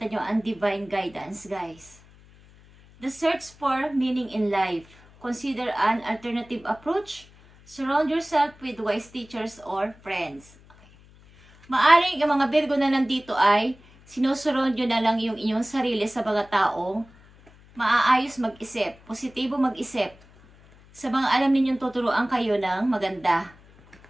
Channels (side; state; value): left; noise; hum, 25 dB below the sound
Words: nyo ang divine guidance, guys. The search for meaning in life. Consider an alternative approach. Surround yourself with wise teachers or friends. Okay. Maaring ang mga Virgo na nandito ay sinusurround nyo na lang yung inyong sarili sa mga taong maaayos mag-isip, positibo mag-isip, sa mga alam ninyong tuturuan kayo ng maganda